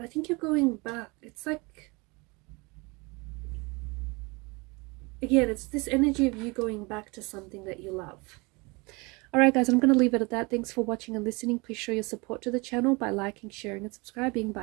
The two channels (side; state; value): left; quieter; 27.0 dB